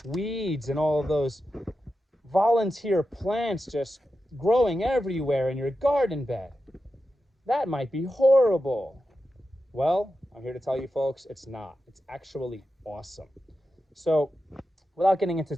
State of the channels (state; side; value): normal; both; correlation 0.90